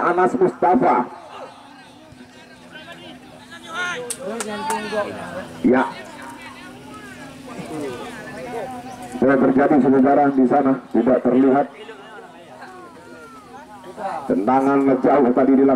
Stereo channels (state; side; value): identical; both; correlation 1.00